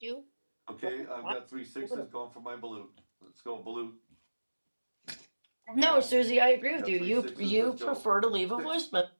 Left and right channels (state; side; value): inverted; both; correlation -1.00